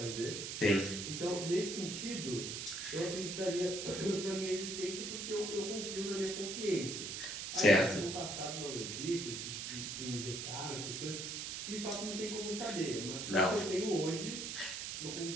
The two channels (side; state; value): right; noise; hiss, 5 dB below the sound